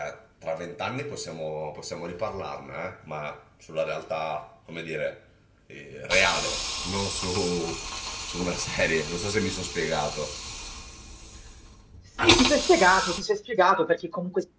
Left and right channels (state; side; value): identical; both; correlation 1.00